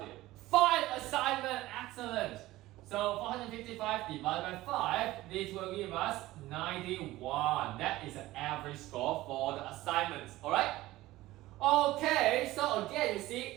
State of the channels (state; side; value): quieter; left; 17.2 dB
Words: there? 5 assignments, excellent. So 455 divided by 5, this will give us 91. That is the average score for the assignments, alright? Okay, so again, you see